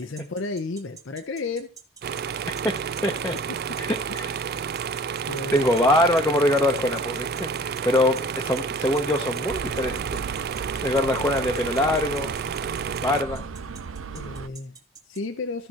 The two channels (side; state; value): both; normal; correlation 0.46